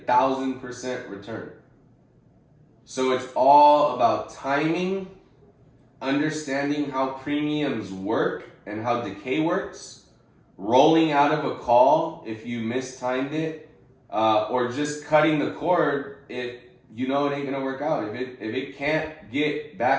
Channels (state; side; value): identical; both; correlation 1.00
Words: 1,000% return. So it's all about timing, understanding how premiums work and how decay works, rolling out of a call if you mistimed it, or just cutting the cord if you know it ain't gonna work out. If it can't get